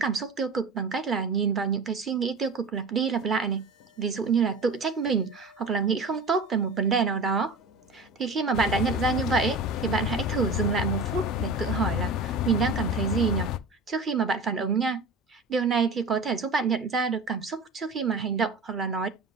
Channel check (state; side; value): quieter; left; 3.1 dB